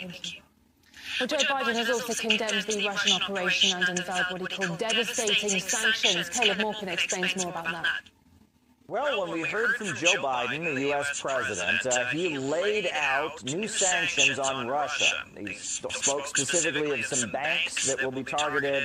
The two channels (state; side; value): identical; both; correlation 1.00